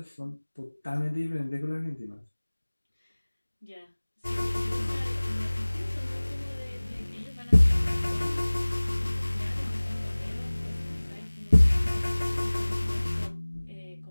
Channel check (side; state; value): both; inverted; correlation -1.00